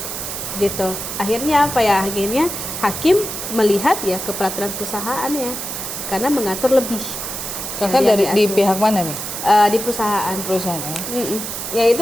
gitu. Akhirnya apa ya? Akhirnya hakim melihat ya ke peraturan perusahaannya karena mengatur lebih. Kakak dari di pihak mana nih? Di perusahaan. Perusahaan ya? Ya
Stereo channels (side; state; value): right; noise; hiss, 6 dB below the sound